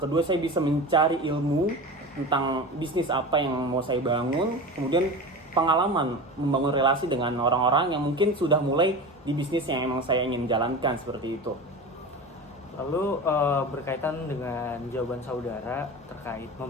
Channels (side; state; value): both; normal; correlation 0.29